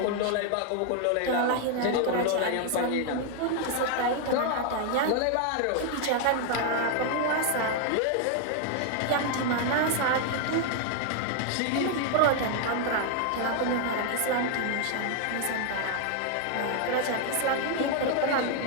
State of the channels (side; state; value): both; different; correlation 0.00